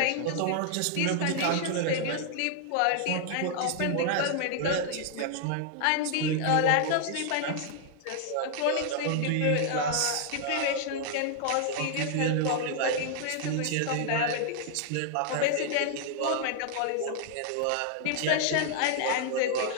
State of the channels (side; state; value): both; different; correlation 0.00